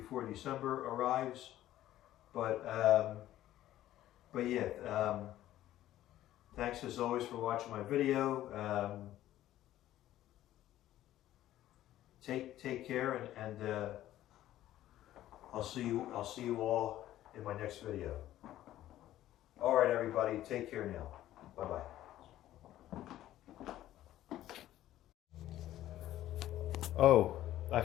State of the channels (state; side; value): quieter; right; 13.6 dB